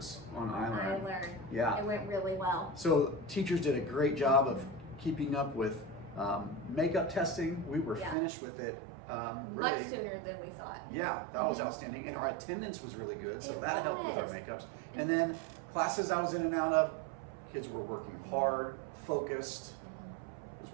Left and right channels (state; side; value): drops out; left; at 8.2 s